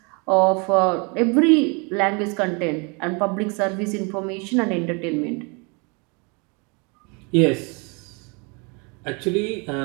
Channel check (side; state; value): left; quieter; 32.0 dB